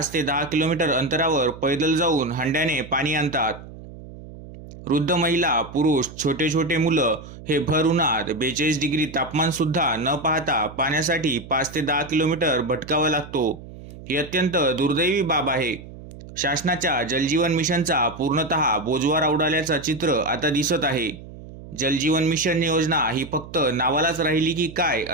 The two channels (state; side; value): noise; right; hum, 16 dB below the sound